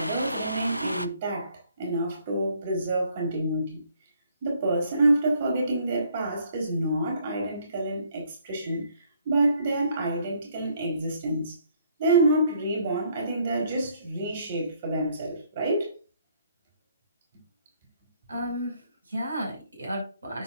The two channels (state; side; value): inverted; both; correlation -0.66